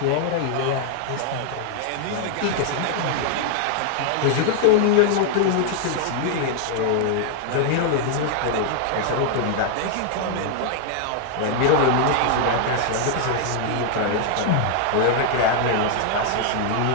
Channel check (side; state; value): both; different; correlation 0.00